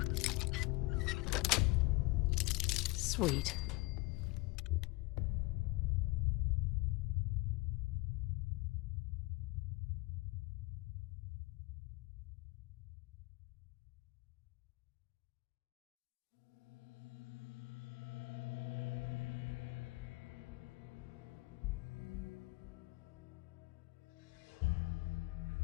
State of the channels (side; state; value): right; quieter; 22.8 dB